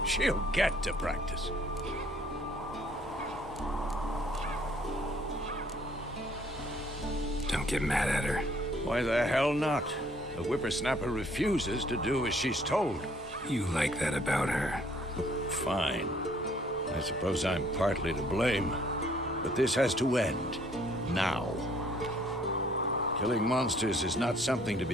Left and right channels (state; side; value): normal; both; correlation 0.62